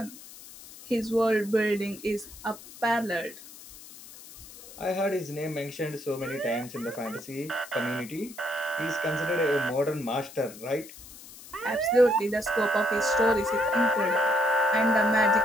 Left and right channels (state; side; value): noise; left; hiss, 17 dB below the sound